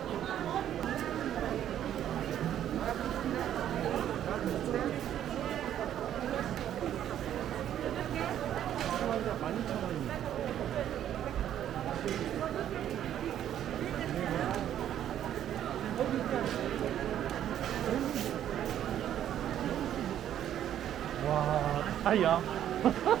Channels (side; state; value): left; quieter; 10.8 dB